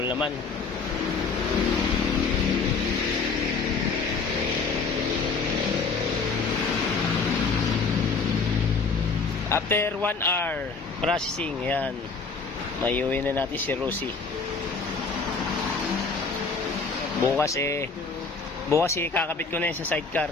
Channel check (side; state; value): right; quieter; 4.6 dB